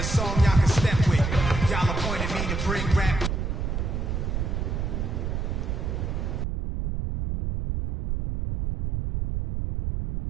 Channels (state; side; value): noise; right; rumble, 2 dB below the sound